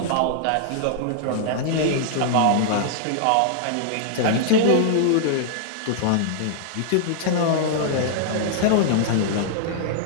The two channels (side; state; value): both; different; correlation -0.01